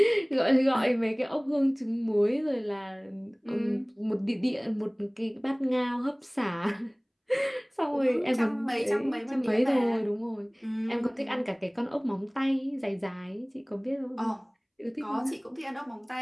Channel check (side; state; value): both; identical; correlation 1.00